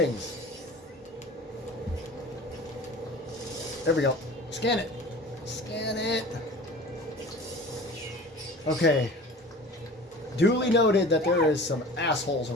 There we go. Scan it. Scan it. Okay. Duly noted that there is some assholes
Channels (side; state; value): both; normal; correlation 0.40